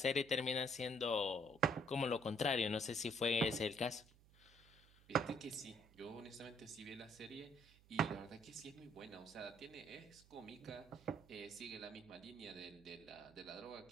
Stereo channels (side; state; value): right; noise; hum, 25 dB below the sound